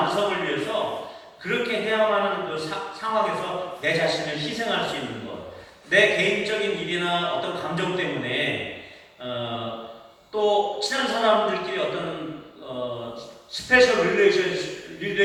위해서 그렇게 해야만 하는 그 상황에서 내 자신을 희생할 수 있는 것, 내 개인적인 일이나 어떤 감정 때문에 또 친한 사람들끼리 어떤 스페셜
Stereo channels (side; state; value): both; identical; correlation 1.00